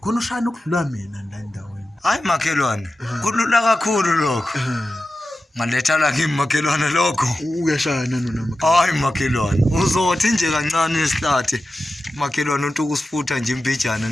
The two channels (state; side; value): normal; both; correlation 0.93